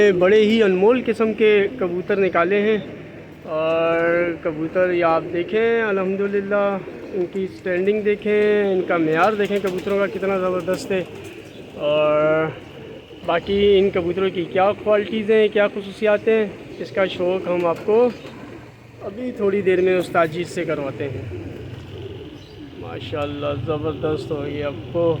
बड़े ही अनमोल किस्म के कबूतर निकाले हैं। और कबूतर ये आप देखें, अल्हम्दुलिल्लाह इनकी स्टैंडिंग देखें, इनका मेयार देखें कबूतरों का कितना ज़बरदस्त है। और बाकी इन कबूतरों की क्या क्वालिटीज़ हैं, क्या खसूसियात हैं, इसका शौक़ हम आपको अभी थोड़ी देर में उस्ताद जी से करवाते हैं। माशाल्लाह ज़बरदस्त हो, ये अब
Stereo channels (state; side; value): identical; both; correlation 1.00